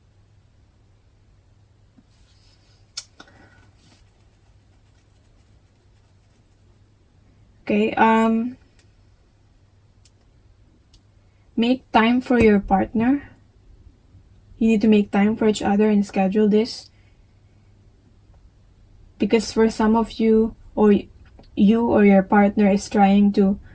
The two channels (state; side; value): identical; both; correlation 1.00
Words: okay, make time for your partner. You need to make time for each other and schedule this. Because for some of you, or your partner is trying to